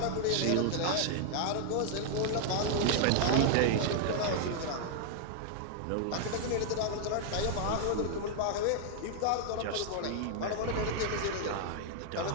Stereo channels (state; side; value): different; both; correlation 0.00